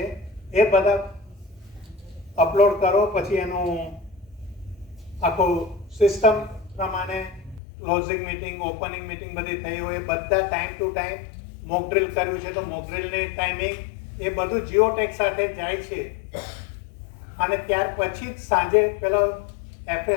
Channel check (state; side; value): drops out; right; at 7.6 s